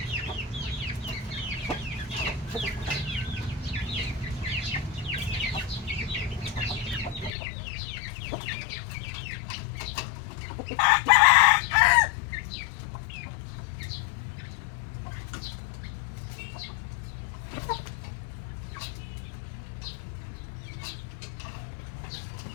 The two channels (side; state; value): right; drops out; at 7.3 s